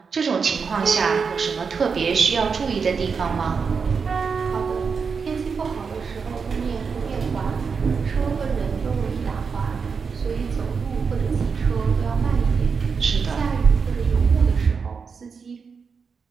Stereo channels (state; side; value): quieter; left; 5.6 dB